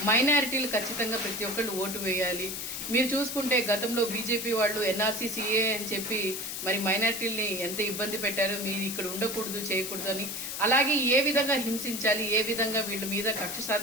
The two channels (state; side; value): noise; left; hiss, 5 dB below the sound